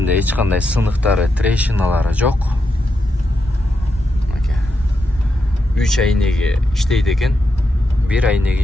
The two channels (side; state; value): both; normal; correlation 0.85